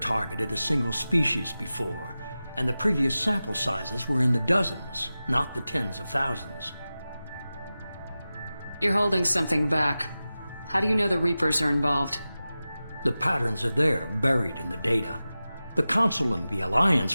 a single species before, and the previous sample sizes were in the dozens, not the tens of thousands. You're holding something back. How do you know the Reapers are involved? The patterns are there, buried in the data. The Council and the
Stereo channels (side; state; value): both; inverted; correlation -0.95